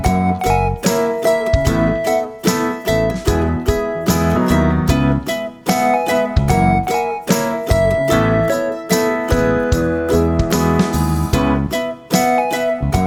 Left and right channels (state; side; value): identical; both; correlation 1.00